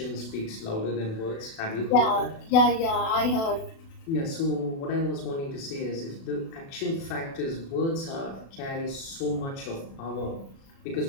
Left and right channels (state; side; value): late; right; 36 ms